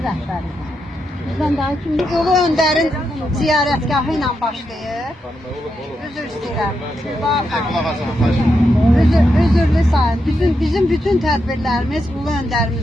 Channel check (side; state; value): both; normal; correlation 0.84